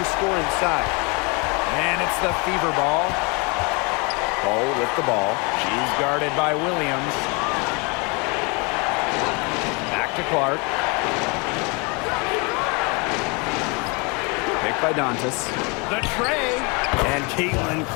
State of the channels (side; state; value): right; quieter; 30.5 dB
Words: to score inside. And it's the Fever ball. Hull with the ball. She's guarded by Williams. To Clark. Picked by Dantas. The tray. And